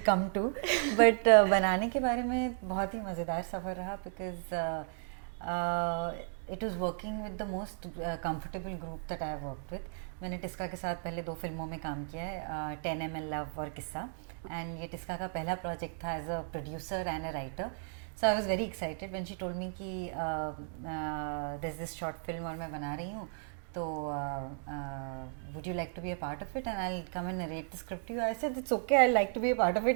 come to, but बनाने के बारे में बहुत ही मज़ेदार सफ़र रहा because it was working with the most comfortable group that I have worked with. मैंने टिस्का के साथ पहले 2 फिल्मों में काम किया है, 10 ml लव और किस्सा, एंड ये टिस्का का पहला प्रोजेक्ट था as a producer and a writer. So I was very excited when she told me कि दिस दिस शॉर्ट फिल्म और मैं बना रही हूँ, तो would you like to be a part of it and I'll come and narrate the script to you. I said it's okay, I'd like to be a part of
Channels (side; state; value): left; silent; digital silence